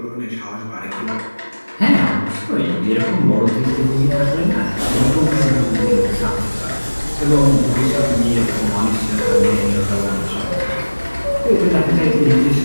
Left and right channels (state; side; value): inverted; both; correlation -1.00